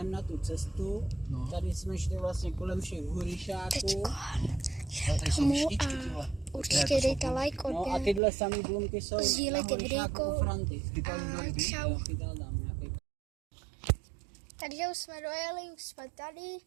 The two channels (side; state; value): left; drops out; at 8.2 s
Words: na tu cestu. No. Tady jsme šli vlastně kolem všech hurišáků. Tady jsou myšličky, tyhle. Určitě dejte like, No a odběr. tyhle samý blumky jsou Sdílejte na hurišáku videjko. u Franty. Chytal někdo ryby? Čau. Jo, chytal tam nějaký. Takže už jsme dojeli, už jsme tady.